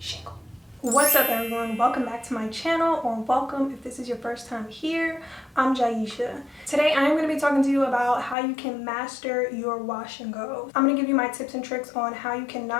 What's up everyone? Welcome back to my channel, or welcome if this is your first time here. I'm Jaisha. Today I am going to be talking to you about how you can master your wash and go. I'm going to give you my tips and tricks on how you can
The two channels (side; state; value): right; drops out; at 8.3 s